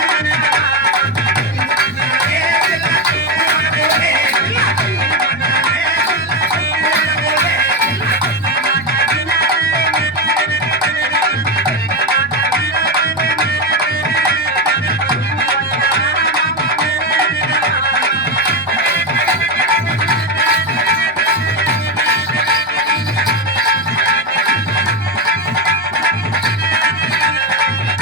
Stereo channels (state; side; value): normal; both; correlation 0.11